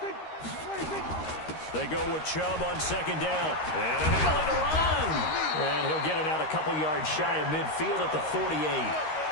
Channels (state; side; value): late; right; 13 ms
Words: They go with Chubb on second down. And an alley to run. And he'll get it out a couple yards shy of midfield at the 48.